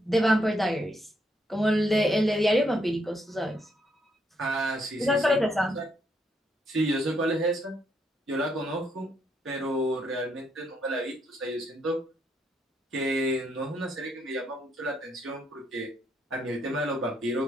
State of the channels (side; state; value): both; normal; correlation 0.75